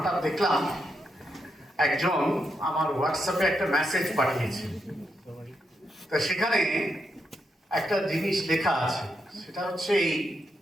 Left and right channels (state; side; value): normal; both; correlation 0.82